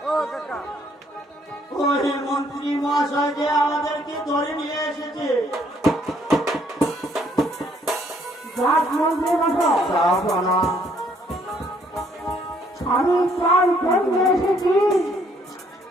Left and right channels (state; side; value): normal; both; correlation 0.66